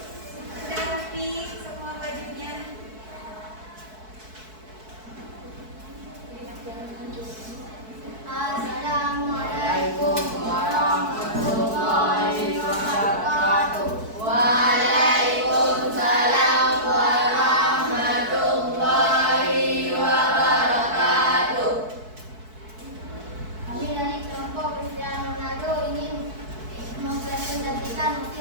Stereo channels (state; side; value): late; left; 4.6 ms